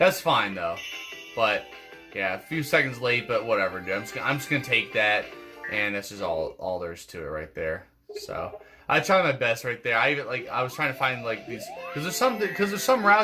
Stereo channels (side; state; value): both; identical; correlation 1.00